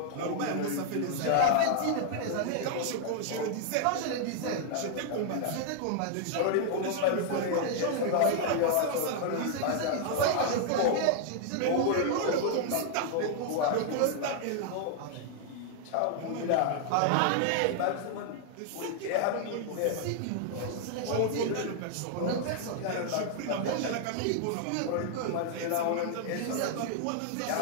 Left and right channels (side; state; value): both; different; correlation 0.00